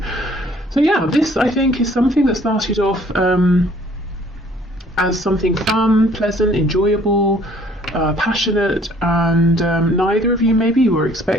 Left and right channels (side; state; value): both; normal; correlation 0.58